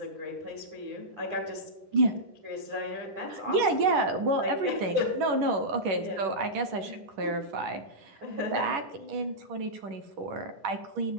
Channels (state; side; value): late; left; 10 ms